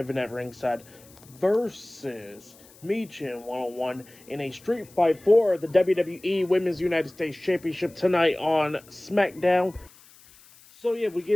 at ringside versus Michin 1-on-1 in a street fight for the WWE Women's United States Championship tonight on SmackDown. So yeah, we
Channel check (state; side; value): noise; left; hiss, 25 dB below the sound